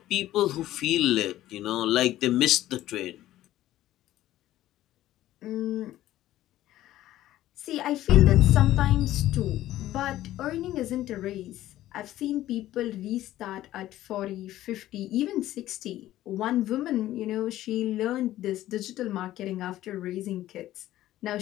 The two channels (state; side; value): quieter; right; 14.3 dB